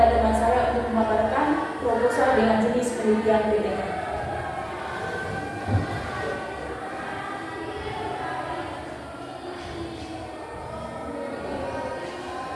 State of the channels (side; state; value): both; identical; correlation 1.00